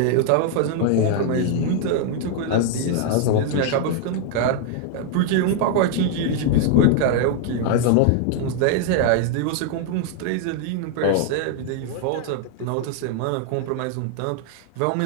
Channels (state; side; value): different; both; correlation 0.00